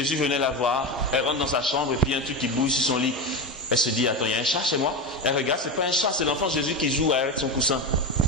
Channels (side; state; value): both; normal; correlation 0.19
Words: venait la voir, elle rentre dans sa chambre et puis il y a un truc qui bouge sur son lit. Elle se dit, attends, il y a un chat chez moi? Elle regarde, c'est pas un chat, c'est l'enfant Jésus qui joue avec son coussin.